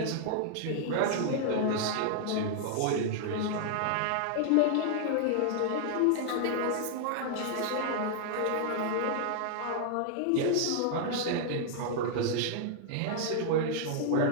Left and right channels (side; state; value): both; different; correlation 0.00